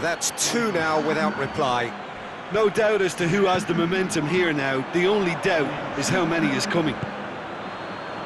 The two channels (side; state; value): both; identical; correlation 1.00